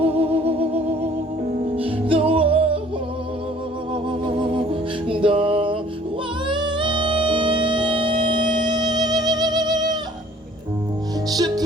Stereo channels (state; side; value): normal; both; correlation 0.55